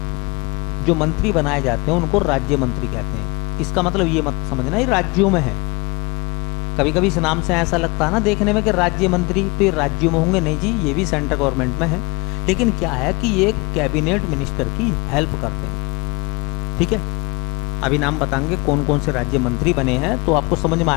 जो मंत्री बनाए जाते हैं उनको राज्य मंत्री कहते हैं। इसका मतलब ये मत समझना ये राज्यों में है। कभी कभी इस नाम से ऐसा लगता है ना देखने में कि राज्य मंत्री तो ये राज्यों में होंगे, नहीं जी, ये भी सेंट्रल गवर्नमेंट में है, लेकिन क्या है कि ये कैबिनेट मिनिस्टर की हेल्प करते हैं। ठीक है, अभी नाम बताएंगे कौन कौन से राज्य मंत्री बने हैं तो आपको समझ में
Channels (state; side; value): quieter; right; 27.2 dB